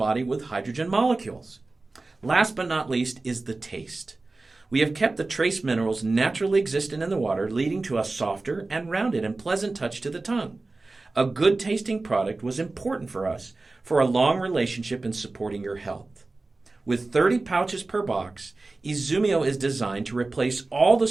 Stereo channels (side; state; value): left; quieter; 3.3 dB